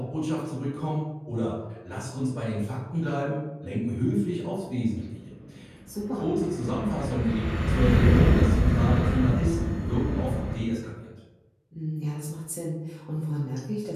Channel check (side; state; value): both; identical; correlation 1.00